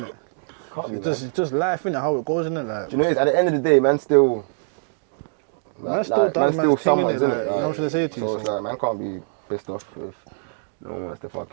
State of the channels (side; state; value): left; silent; digital silence